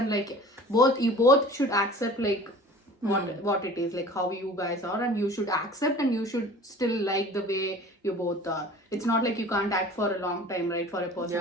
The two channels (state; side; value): normal; both; correlation 0.43